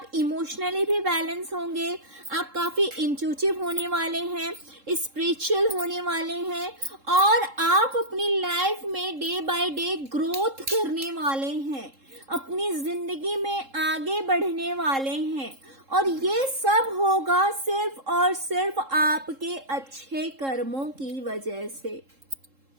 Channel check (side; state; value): left; late; 3.7 ms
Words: इमोशनली भी बैलेंस होंगे, आप काफी इंट्यूटिव होने वाले हैं, स्पिरिचुअल होने वाले हैं, और आप अपनी लाइफ में डे बाय डे ग्रोथ करने वाले हैं, अपनी जिंदगी में आगे बढ़ने वाले हैं। और ये सब होगा सिर्फ और सिर्फ आपके अच्छे कर्मों की वजह से।